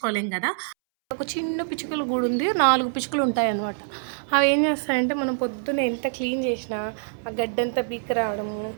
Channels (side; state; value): left; silent; 62 dB below the other